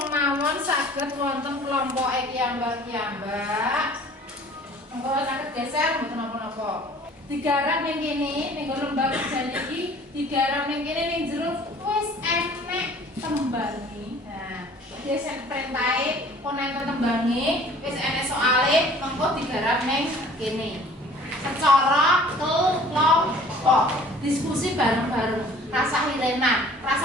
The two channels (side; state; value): both; normal; correlation 0.51